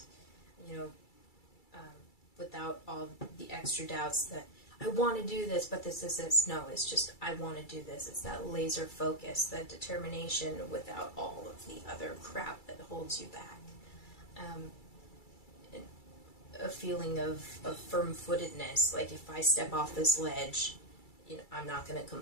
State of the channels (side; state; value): right; late; 2.3 ms